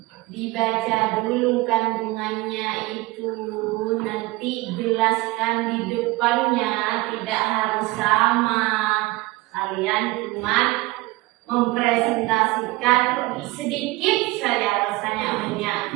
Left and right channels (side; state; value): left; quieter; 20.8 dB